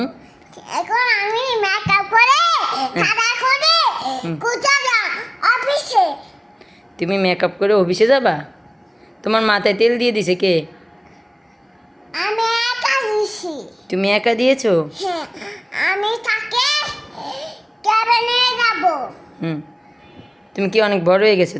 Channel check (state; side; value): identical; both; correlation 1.00